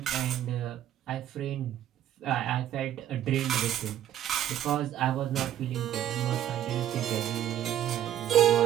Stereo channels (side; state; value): left; quieter; 11.3 dB